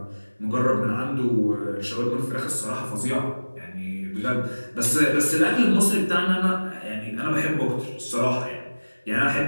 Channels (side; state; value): both; inverted; correlation -1.00